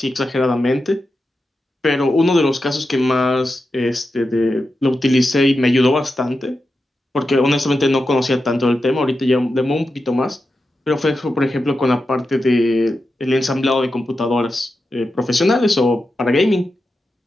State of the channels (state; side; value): normal; both; correlation 0.90